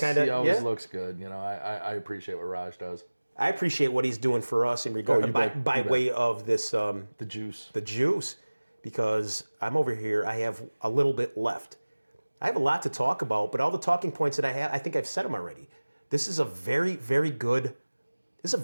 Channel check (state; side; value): inverted; both; correlation -1.00